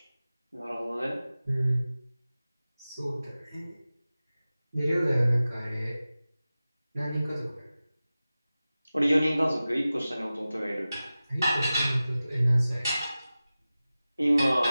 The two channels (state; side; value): inverted; both; correlation -0.96